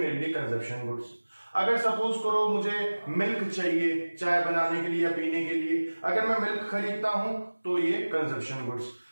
लिए कंजप्शन गुड्स। अगर सपोज करो मुझे मिल्क चाहिए चाय बनाने के लिए या पीने के लिए, अगर मैं मिल्क खरीदता हूं तो ये कंजप्शन गुड्स।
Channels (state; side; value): inverted; both; correlation -1.00